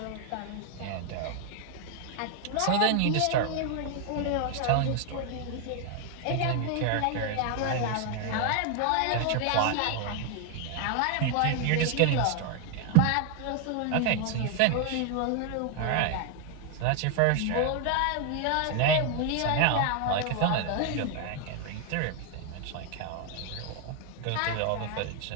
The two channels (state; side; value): different; both; correlation 0.00